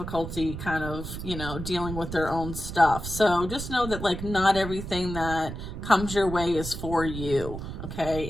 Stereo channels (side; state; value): right; noise; rumble, 7 dB below the sound